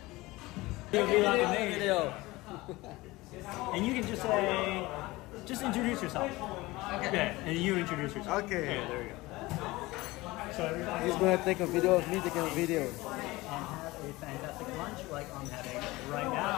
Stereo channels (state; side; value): quieter; right; 20.5 dB